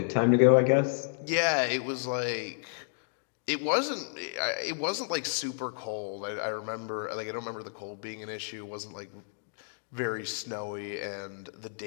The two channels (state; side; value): silent; right; digital silence